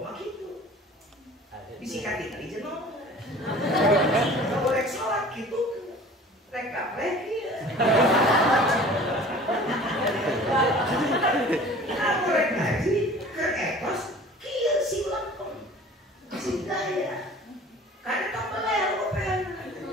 gitu. Disikatin aja no. Kalau rek sholat gitu, rek kaplek ya. Kamu rek ngaji ke etos kieu silap sing daya. Kada tong beler open.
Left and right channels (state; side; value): normal; both; correlation 0.45